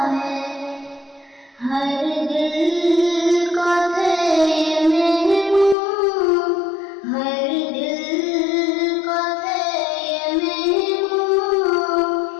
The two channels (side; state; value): right; drops out; at 5.8 s